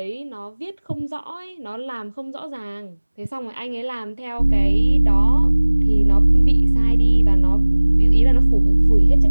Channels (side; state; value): both; inverted; correlation -1.00